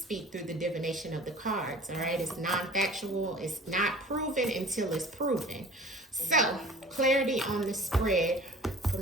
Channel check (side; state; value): both; normal; correlation 0.44